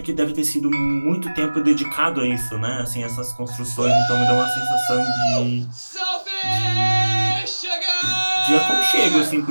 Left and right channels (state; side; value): inverted; both; correlation -1.00